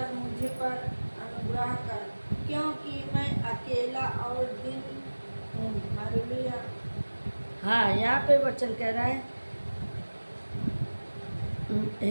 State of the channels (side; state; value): both; inverted; correlation -1.00